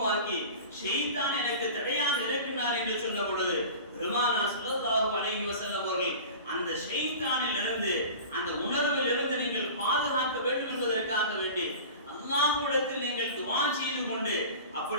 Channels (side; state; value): both; inverted; correlation -0.37